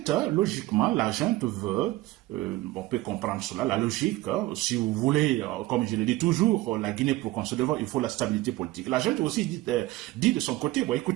logiquement, la junte veut, on peut comprendre cela, la logique, si vous voulez, comme je le dis toujours, la Guinée pour qu'on se développe, il faut la stabilité politique. La junte aussi dit de son côté, bon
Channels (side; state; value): left; quieter; 18.0 dB